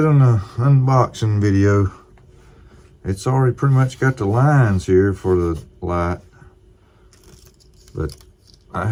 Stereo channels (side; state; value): both; identical; correlation 1.00